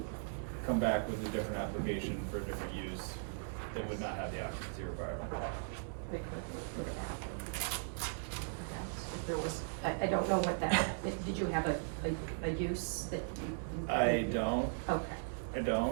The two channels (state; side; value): silent; left; digital silence